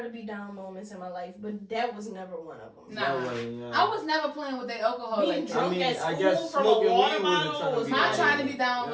to be down moments in my life, but that was never one of them. Nah. That wasn't, down. I was never playing with that alcohol Being like that. drunk I mean, at I school guess from a smoking water weed wasn't bottle trying to was be My down. trying to be down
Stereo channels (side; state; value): both; identical; correlation 1.00